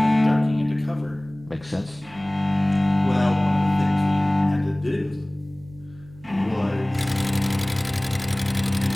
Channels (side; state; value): right; noise; hum, 22 dB below the sound